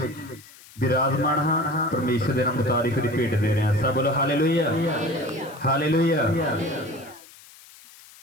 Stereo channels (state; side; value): noise; left; hiss, 22 dB below the sound